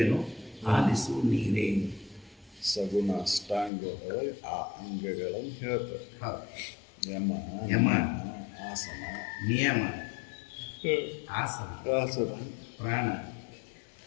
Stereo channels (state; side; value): drops out; right; at 3.7 s